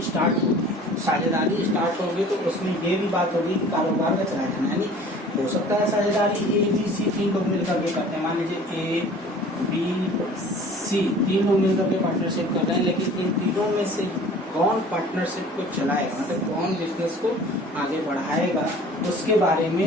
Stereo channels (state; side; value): normal; both; correlation 0.47